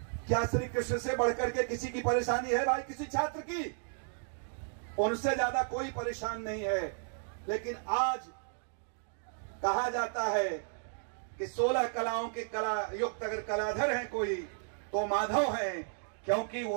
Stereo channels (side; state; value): left; silent; digital silence